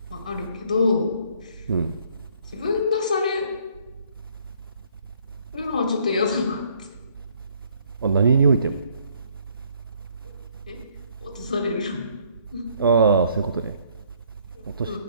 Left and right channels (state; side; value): inverted; both; correlation -0.64